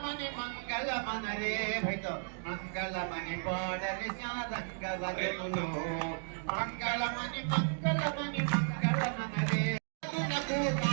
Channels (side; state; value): left; silent; digital silence